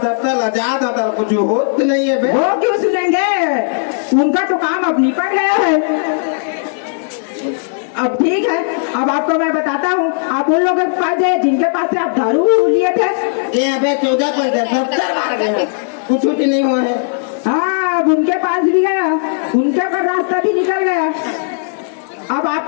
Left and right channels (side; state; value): right; silent; digital silence